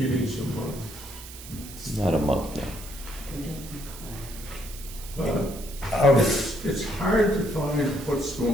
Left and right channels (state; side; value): noise; right; hiss, 14 dB below the sound